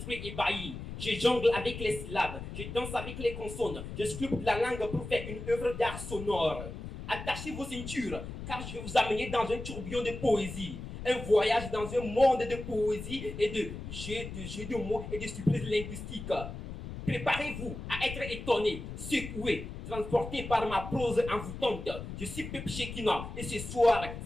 ébahis. Je jongle avec les syllabes, je danse avec les consonnes, je sculpte la langue pour faire une œuvre d'art sonore. Attachez vos ceintures, car je vais vous amener dans un tourbillon de poésie. Un voyage dans un monde de poésie et de jeux de mots et de surprises linguistiques. Préparez-vous à être étonné, secoué, transporté par ma prose envoûtante. Je suis Pep Shekina et ce soir,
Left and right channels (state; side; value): noise; left; rumble, 9 dB below the sound